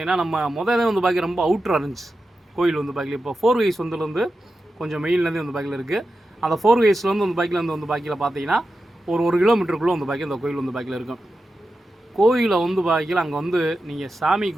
நம்ம முதல்ல வந்து பாக்கிய ரொம்ப அவுட்ராக இருந்துச்சு கோயில் வந்து பாக்கியில். இப்போ 4 வேஸ் வந்துலேருந்து கொஞ்சம் மெயின்லேருந்து வந்து பாக்கியில் இருக்குது. அந்த 4 வேஸ்லேருந்து வந்து பாக்கியில் வந்து பாக்கியில் பார்த்தீங்கன்னா ஒரு கிலோமீட்டருக்குள்ளே வந்து பாக்கிய இந்த கோயில் வந்து பாக்கியில் இருக்கும். கோயிலை வந்து பாக்கியில் அங்கே வந்து நீங்கள் சாமி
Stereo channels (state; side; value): normal; both; correlation 0.91